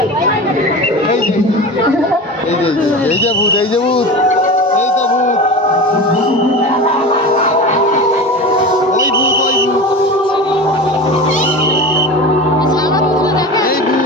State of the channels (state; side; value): normal; both; correlation 0.30